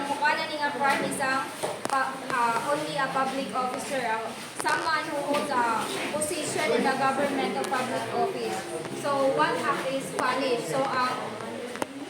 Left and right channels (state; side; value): identical; both; correlation 1.00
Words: only a public officer, someone who holds a position in the government or public office. So, one act is punished. So,